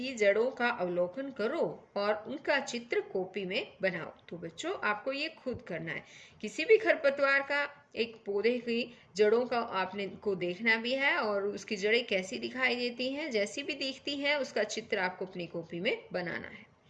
जड़ों का अवलोकन करो और उनका चित्र कॉपी में बनाओ। तो बच्चों आपको ये खुद करना है। किसी भी खरपतवार का एक पौधे की जड़ों का आपने को देखना भी है और उसकी जड़ें कैसी दिखाई देती हैं, जैसी भी दिखती हैं उसका चित्र आपको अपनी कॉपी में बनाना है।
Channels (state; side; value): identical; both; correlation 1.00